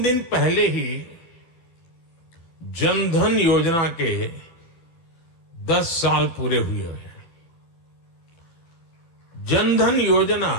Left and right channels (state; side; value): late; right; 12 ms